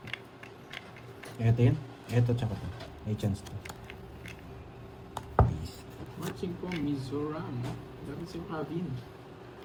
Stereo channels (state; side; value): identical; both; correlation 1.00